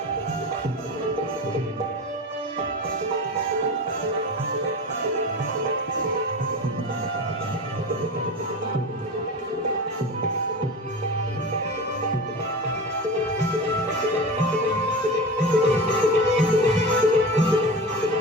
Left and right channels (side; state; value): both; normal; correlation 0.29